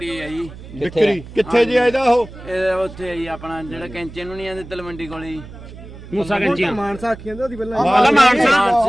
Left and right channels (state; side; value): noise; right; hum, 16 dB below the sound